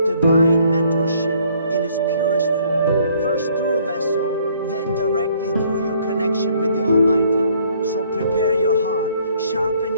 divine mentorship in its purest form. First through a vessel, then directly through your connection with the Almighty. So prepare your heart, sharpen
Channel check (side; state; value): both; inverted; correlation -0.63